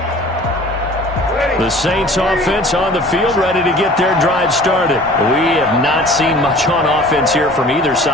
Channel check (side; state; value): both; normal; correlation 0.46